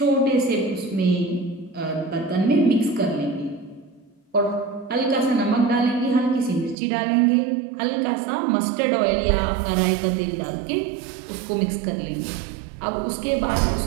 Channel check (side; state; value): left; drops out; at 6.8 s